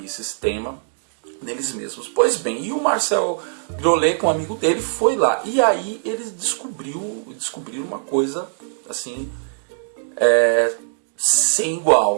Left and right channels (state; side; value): silent; left; digital silence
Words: sistema deles mesmos. Pois bem, e o Marcel Griolet, com um amigo dele, foi lá. E aí eles descobriram uma coisa assim, sem